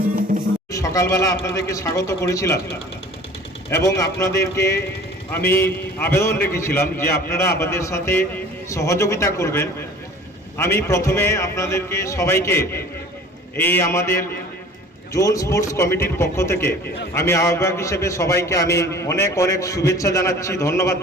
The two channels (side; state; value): both; normal; correlation 0.46